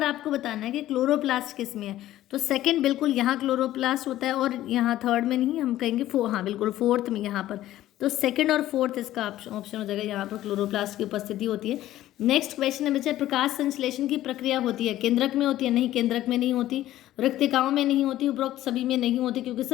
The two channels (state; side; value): quieter; right; 14.1 dB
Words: आपको बताना है कि क्लोरोप्लास्ट किस में है, तो सेकंड बिल्कुल यहाँ क्लोरोप्लास्ट होता है, और यहाँ थर्ड में नहीं, हम कहेंगे हाँ बिल्कुल फोर्थ में यहाँ पर, तो सेकंड और फोर्थ इसका ऑप्शन हो जाएगा, यहाँ पर क्लोरोप्लास्ट की उपस्थिति होती है। नेक्स्ट क्वेश्चन है बच्चे, प्रकाश संश्लेषण की प्रक्रिया होती है, केंद्रक में होती है, नहीं केंद्रक में नहीं होती, रिक्तिकाओं में नहीं होती, उपरोक्त सभी में नहीं होती, क्योंकि